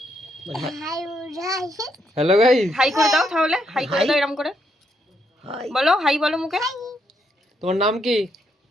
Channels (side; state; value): both; normal; correlation 0.76